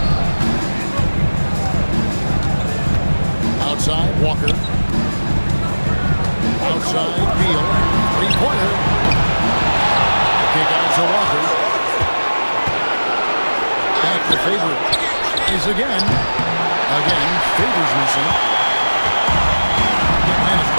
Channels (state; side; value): inverted; both; correlation -1.00